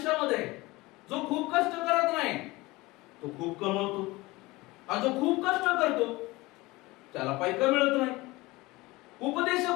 जो खूप कष्ट करत नाही तो खूप कमवतो, आणि जो खूप कष्ट करतो त्याला पैसा मिळत नाही.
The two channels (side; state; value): right; quieter; 21.2 dB